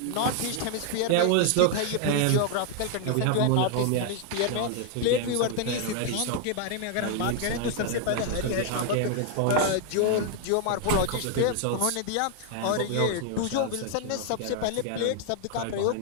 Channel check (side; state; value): both; different; correlation 0.00